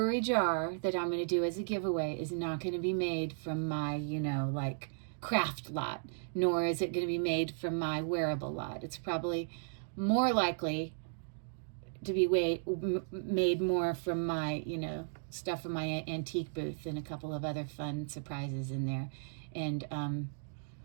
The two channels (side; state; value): left; silent; digital silence